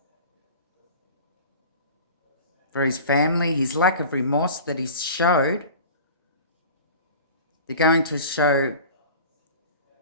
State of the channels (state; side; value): inverted; both; correlation -0.39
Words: for his family, his lack of remorse that he's showed. They're going to show